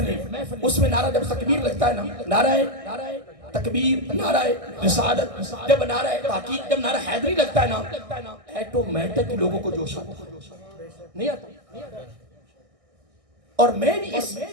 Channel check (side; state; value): left; late; 1.6 ms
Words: اس میں نعرہ جب تکبیر لگتا ہے نا، نعرہ تکبیر، نعرہ رسالت، جب نعرہ تحقیق، جب نعرہ حیدری لگتا ہے نا، ایٹومیٹک لوگوں کو جوش آتا نہیں آتا۔ اور میں بھی اس